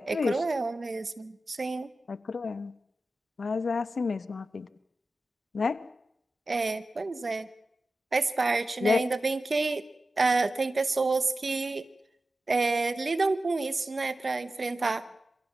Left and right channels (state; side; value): normal; both; correlation 0.93